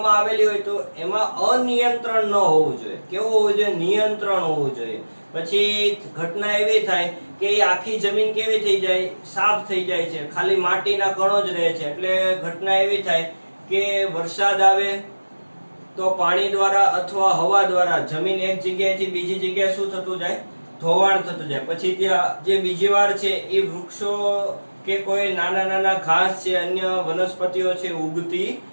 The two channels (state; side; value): inverted; both; correlation -1.00